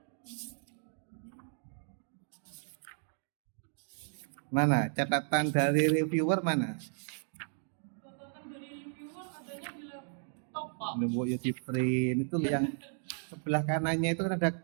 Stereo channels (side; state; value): left; silent; 55 dB below the other